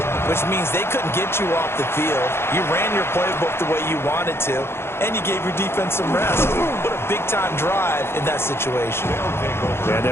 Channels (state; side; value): late; right; 0.12 ms